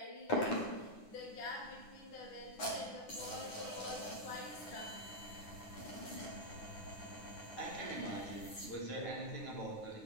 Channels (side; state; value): right; late; 9.7 ms